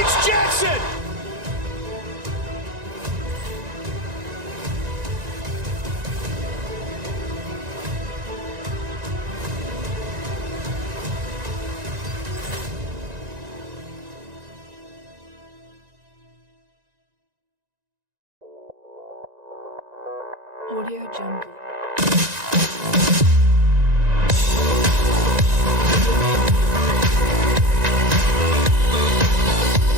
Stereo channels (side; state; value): left; late; 1.9 ms